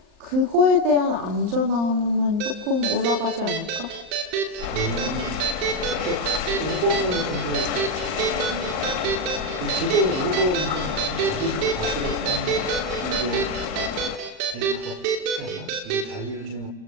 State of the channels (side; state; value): left; late; 38 ms